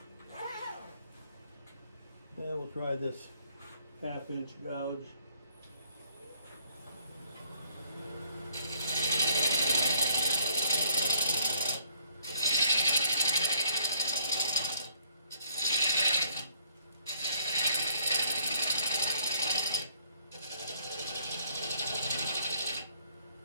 And we'll try this 1/2 inch gouge.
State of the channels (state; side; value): inverted; both; correlation -0.64